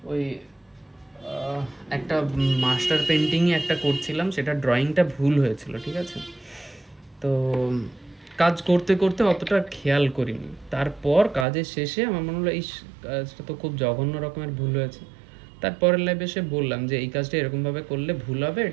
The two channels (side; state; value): left; drops out; at 11.5 s